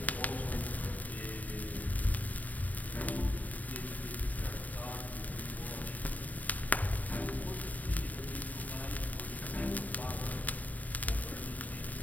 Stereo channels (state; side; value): late; right; 0.076 ms